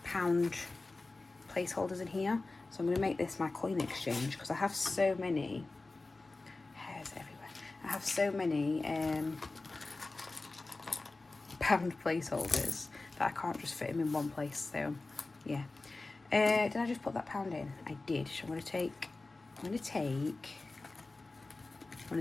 pound placeholders in here. So I'm going to make this my coin exchange because I have so many hairs everywhere. I have so many pound placeholders that I can't just fit them in one place. So yeah. Did I just put that pound in? I did. So I'm going to take one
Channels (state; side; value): quieter; right; 3.3 dB